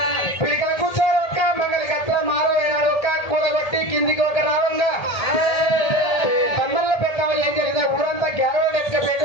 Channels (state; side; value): late; right; 1.7 ms